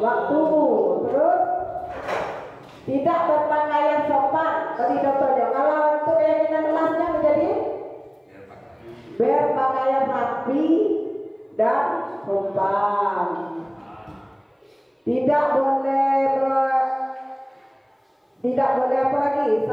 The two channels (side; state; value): both; identical; correlation 1.00